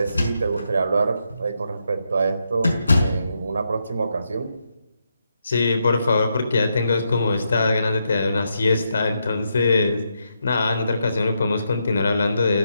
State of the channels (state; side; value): inverted; both; correlation -0.81